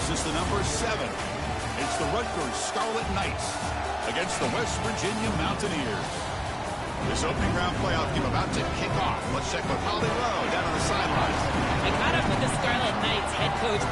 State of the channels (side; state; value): both; identical; correlation 1.00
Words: the number 7. It's the Rutgers Scarlet Knights against the West Virginia Mountaineers. This opening round playoff game about to kick off. Let's check with Holly Lowe down on the sidelines. I caught up with the Scarlet Knights head coach